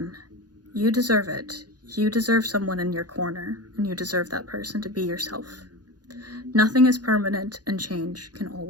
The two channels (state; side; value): late; left; 0.69 ms